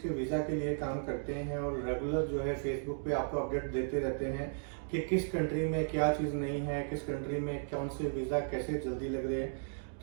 के वीज़ा के लिए काम करते हैं और रेगुलर जो है फेसबुक पे आपको अपडेट देते रहते हैं कि किस कंट्री में क्या चीज़ नहीं है, किस कंट्री में कौन से वीज़ा कैसे जल्दी लग रहे हैं।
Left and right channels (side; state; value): left; silent; digital silence